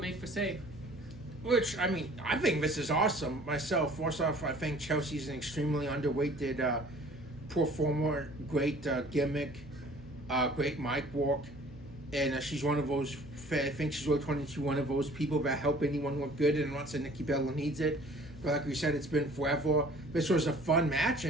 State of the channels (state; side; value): noise; right; hum, 22 dB below the sound